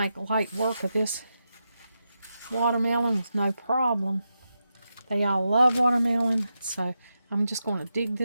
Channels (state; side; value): inverted; both; correlation -0.87